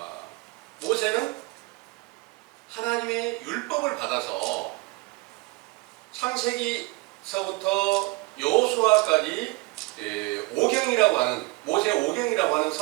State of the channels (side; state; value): left; quieter; 23.5 dB